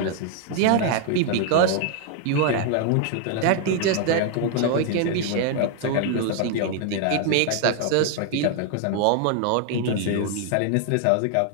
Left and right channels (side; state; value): both; different; correlation 0.00